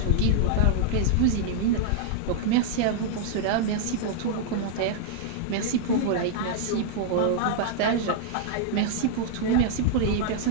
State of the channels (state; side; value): different; both; correlation -0.01